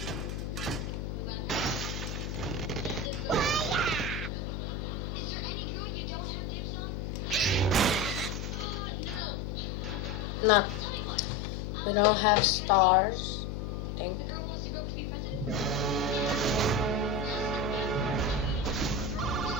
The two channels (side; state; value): left; noise; hum, 4 dB below the sound